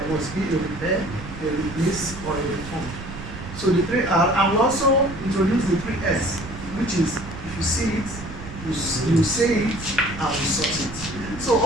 must be a repair, a replace, or a refund. So the 3R, and we also introduced the 3S, which is, if you see it, you say it, and you sort it. So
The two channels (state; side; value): noise; right; rumble, 11 dB below the sound